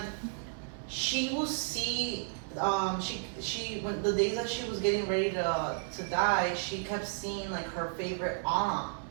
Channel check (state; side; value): silent; left; 56 dB below the other